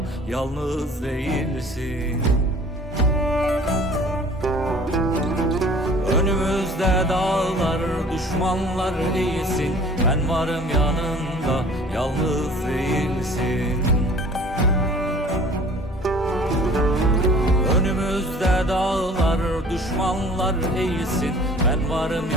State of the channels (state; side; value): normal; both; correlation 0.49